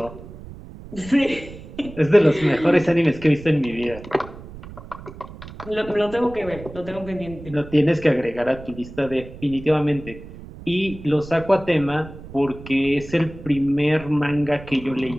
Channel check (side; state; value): right; noise; rumble, 15 dB below the sound